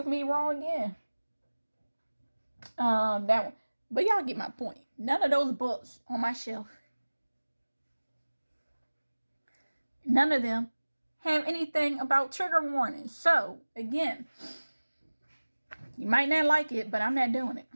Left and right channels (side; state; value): both; inverted; correlation -1.00